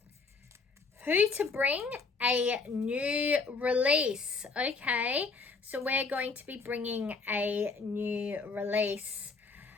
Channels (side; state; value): right; quieter; 4.4 dB